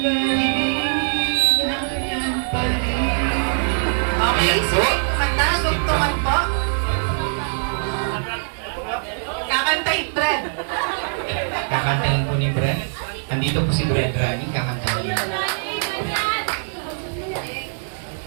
naligayan pa rin. Okay, sige. Kumanta, tugtungan po. Kakantahin, Brad. Kakantahin po ni Brad. Andito po si Brad Rani, kakantahin niya.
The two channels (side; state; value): left; silent; 64 dB below the other